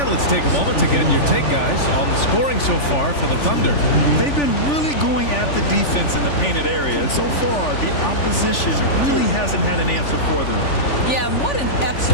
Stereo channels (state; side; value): late; right; 3.4 ms